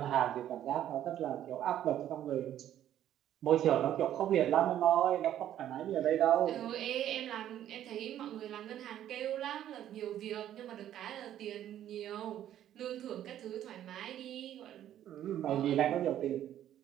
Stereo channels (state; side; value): quieter; left; 11.5 dB